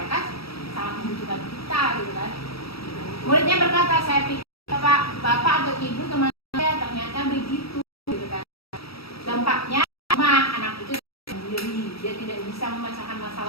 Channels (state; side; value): late; right; 0.76 ms